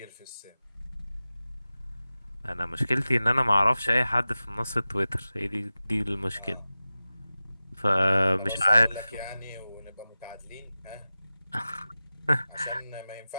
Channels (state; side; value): inverted; both; correlation -0.96